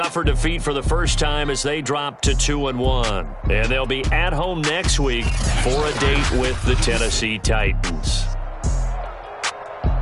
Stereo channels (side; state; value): both; identical; correlation 1.00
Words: defeat for the first time as they drop to 2-1. And they'll be at home next week for a date with the Tennessee Titans.